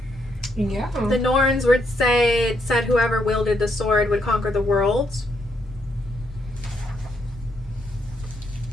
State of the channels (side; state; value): both; normal; correlation 0.76